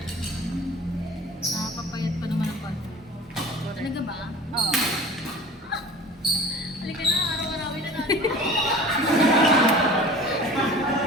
Nakapapayat pa naman ang palo. Talaga ba? Oo. Halika na, araw-arawin na natin.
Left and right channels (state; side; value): normal; both; correlation 0.41